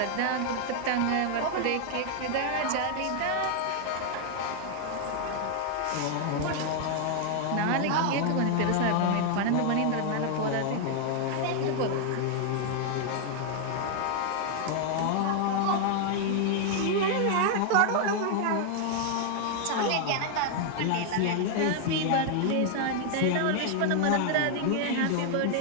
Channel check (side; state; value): both; different; correlation 0.00